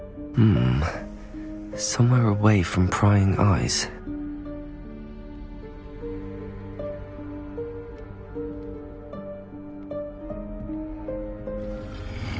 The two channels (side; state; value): both; identical; correlation 1.00